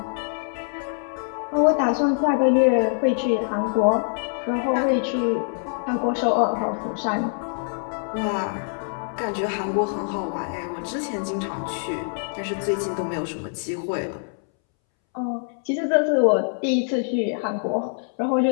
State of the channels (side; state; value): right; silent; 62 dB below the other